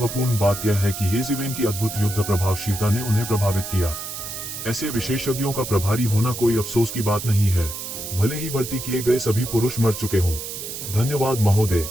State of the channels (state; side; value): noise; right; hiss, 8 dB below the sound